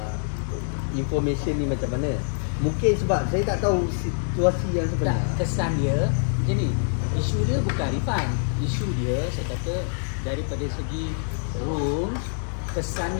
information ni macam mana. Mungkin sebab saya tak tahu situasi yang sebenar. Kesan dia macam ni. Isu dia bukan refund. Isu dia saya kata daripada segi rules, kesan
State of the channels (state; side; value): silent; right; digital silence